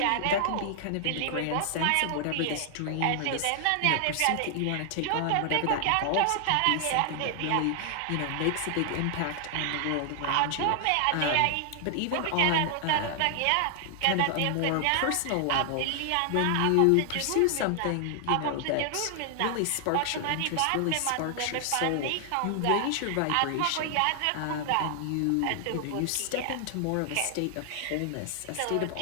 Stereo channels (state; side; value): different; both; correlation 0.00